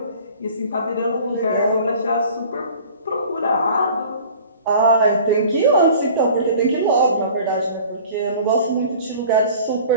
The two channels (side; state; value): both; inverted; correlation -0.46